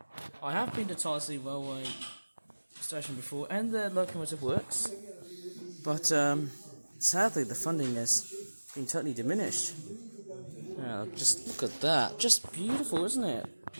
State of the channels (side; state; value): both; inverted; correlation -1.00